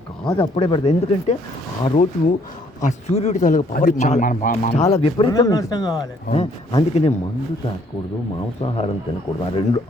కాదు అప్పుడే పెడతారు. ఎందుకంటే ఆ రోజు ఆ సూర్యుడి తాలూకు పవర్ చాలా విపరీతంగా. అందుకనే మందు తాగకూడదు, మాంసాహారం తినకూడదు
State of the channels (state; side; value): normal; both; correlation 0.64